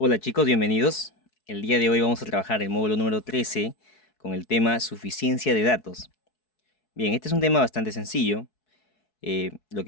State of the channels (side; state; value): right; late; 4.7 ms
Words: chicos, bienvenidos. El día de hoy vamos a trabajar el módulo número 13 con el tema suficiencia de datos. Bien, este es un tema bastante sencillo. Lo